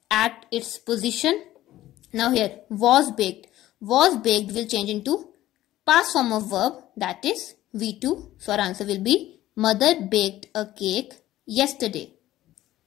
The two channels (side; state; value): right; quieter; 14.7 dB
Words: at its position. Now here was baked. Was baked will change into past form of verb, that is V2. So our answer will be mother baked a cake yesterday.